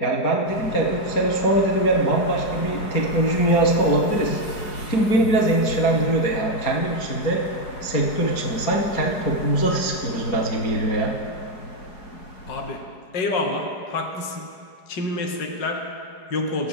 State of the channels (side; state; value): right; late; 4.8 ms